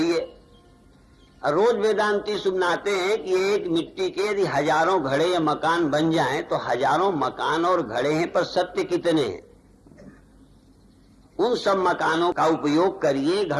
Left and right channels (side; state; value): both; identical; correlation 1.00